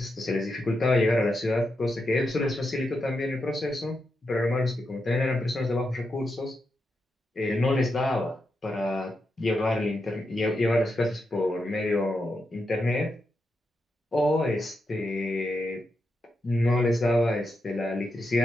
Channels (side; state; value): both; normal; correlation 0.86